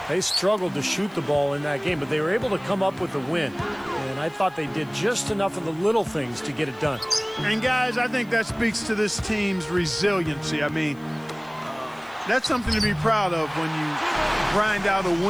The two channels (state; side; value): noise; left; hiss, 29 dB below the sound